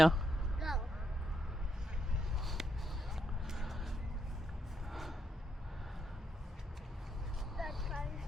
Go. Let's try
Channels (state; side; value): normal; both; correlation 0.80